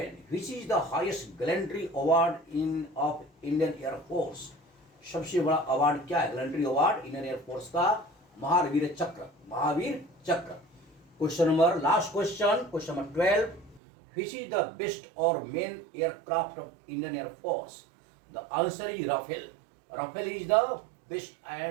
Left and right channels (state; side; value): drops out; left; at 13.8 s